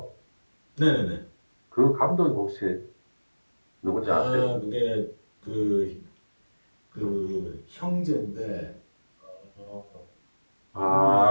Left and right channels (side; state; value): both; inverted; correlation -1.00